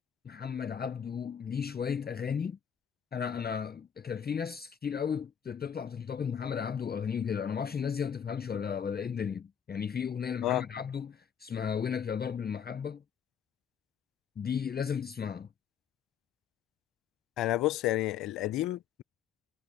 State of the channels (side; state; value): right; quieter; 8.1 dB